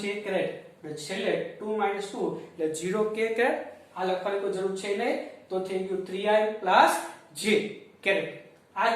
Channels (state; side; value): identical; both; correlation 1.00